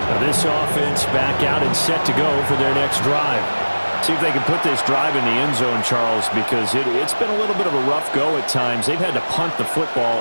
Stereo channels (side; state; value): both; inverted; correlation -1.00